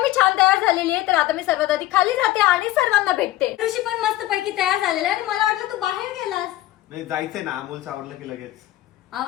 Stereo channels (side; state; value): right; quieter; 15.6 dB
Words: मी छान तयार झालेली आहे तर आता मी सर्वात आधी खाली जाते आणि सर्वांना भेटते. ऋषी पण मस्तपैकी तयार झालेला आहे आणि मला वाटलं तू बाहेर गेलास. नाही जायचंय ना, अमोलचं आवडलं की लगेच.